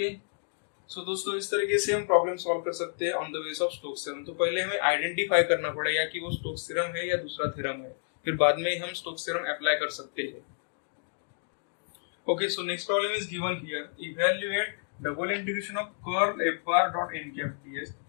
सो दोस्तों इस तरीके से हम प्रॉब्लम सॉल्व कर सकते हैं on the base of Stokes theorem. तो पहले हमें आइडेंटिफाई करना पड़ेगा कि वो स्टोक्स थ्योरम है या दूसरा थ्योरम है, फिर बाद में हम स्टोक्स थ्योरम अप्लाई कर सकते हैं। Okay, so next problem is given here, evaluate double integration of curl f bar dot n cap ds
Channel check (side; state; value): right; silent; digital silence